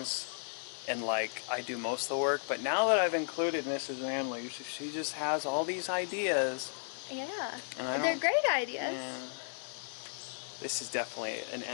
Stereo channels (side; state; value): right; silent; digital silence